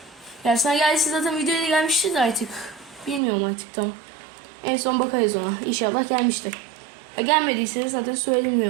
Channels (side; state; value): left; drops out; at 3.2 s